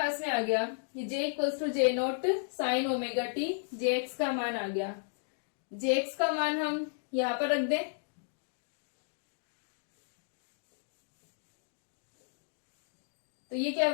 में आ गया, ये j equals to j naught sine omega t, jx का मान आ गया। jx का मान हम यहां पर रख दें, तो ये क्या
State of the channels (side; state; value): right; silent; digital silence